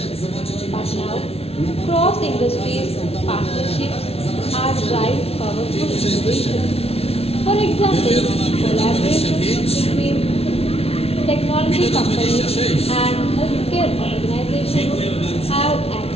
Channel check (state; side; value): late; right; 0.29 ms